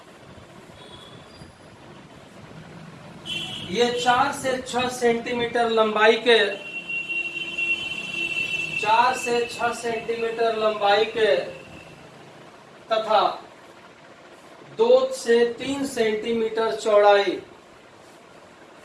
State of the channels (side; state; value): both; identical; correlation 1.00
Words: ये 4 से 6 सेंटीमीटर लंबाई के, 4 से 6 सेंटीमीटर लंबाई के तथा 2 से 3 सेंटीमीटर चौड़ाई,